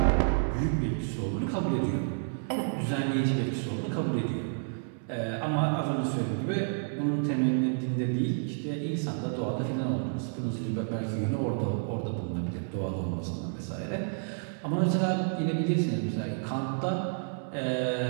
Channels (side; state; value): left; silent; 57 dB below the other